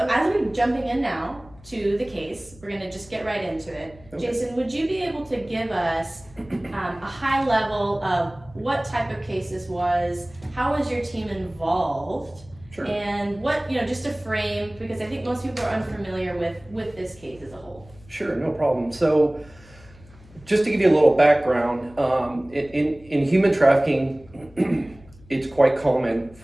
as we're jumping in now to the case, we're gonna just get right into it. Okay. Jason, would you be able to give us a high level of what type of case this was? How was your team involved? Sure. And what, just to frame, because I think most people are unfamiliar with this case as a whole. Sure, no problem. So just to give you a little background, in human trafficking, it's quite common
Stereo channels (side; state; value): left; noise; hum, 24 dB below the sound